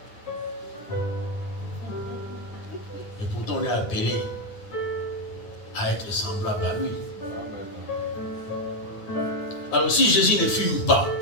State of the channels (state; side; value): late; right; 9.8 ms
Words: Et pourtant on est appelé à être semblable à lui. Alors si Jésus ne fume pas,